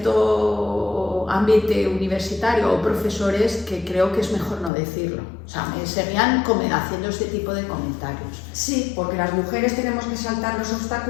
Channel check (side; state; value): right; drops out; at 4.7 s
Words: ambiente universitario o profesores que creo que es mejor no decirlo. O sea, me seguían haciendo este tipo de comentarios. Sí, porque las mujeres tenemos que saltar los